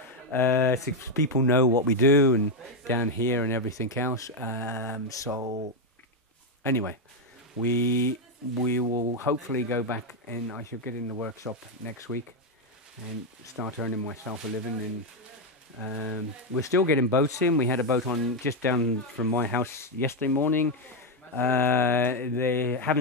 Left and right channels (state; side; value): normal; both; correlation 0.05